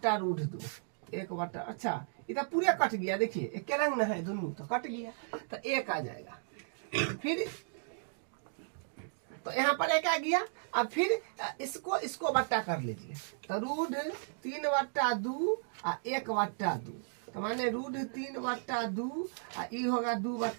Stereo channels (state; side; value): silent; left; digital silence